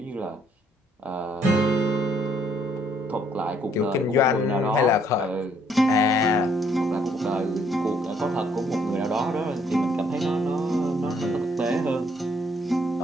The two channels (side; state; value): both; normal; correlation 0.67